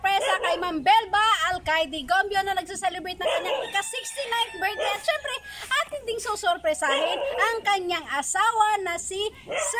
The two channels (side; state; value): both; identical; correlation 1.00